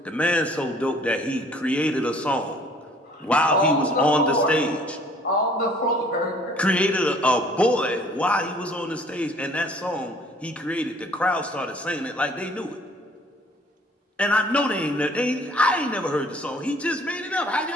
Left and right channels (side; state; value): both; normal; correlation 0.56